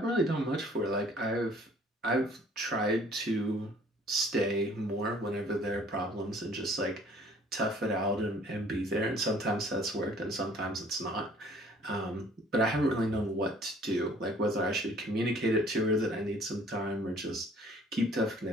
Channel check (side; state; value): both; normal; correlation 0.55